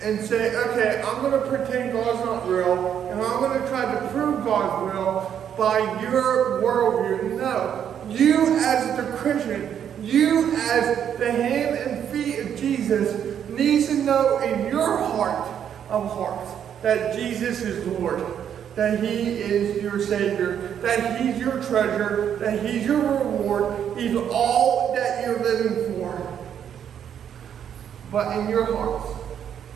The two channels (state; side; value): quieter; left; 9.0 dB